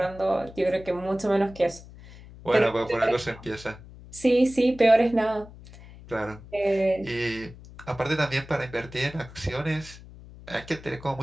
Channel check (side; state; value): left; noise; hum, 18 dB below the sound